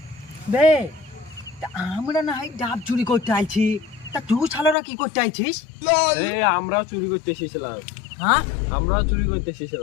বে, তা আমরা না হয় ডাব চুরি করতে আইছি, তা তুই ছালারা কি করতে আইছিস? এই আমরাও চুরি করতে এসেছিলাম, হ্যাঁ, আমরাও চুরি করতে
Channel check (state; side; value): drops out; right; at 4.8 s